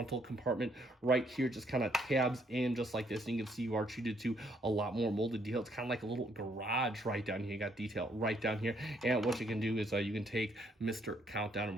compartment right here, just kind of tabs in just like this, and you can see you are treated to a lot more molded detail. It's kind of like a little garage right down here. You got detail right down here, and what you can do is you can take Mr. Countdown, and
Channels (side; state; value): both; normal; correlation 0.69